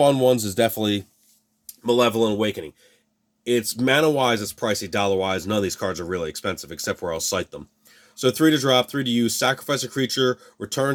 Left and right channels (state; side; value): identical; both; correlation 1.00